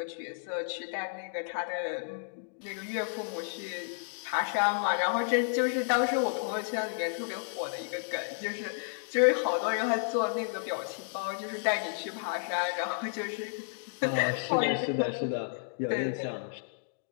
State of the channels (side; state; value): right; silent; digital silence